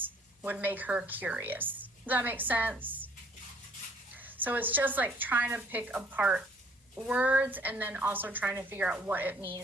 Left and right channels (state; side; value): normal; both; correlation 0.59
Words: would make her curious. Does that make sense? So it's just like trying to pick apart words and then also trying to figure out what it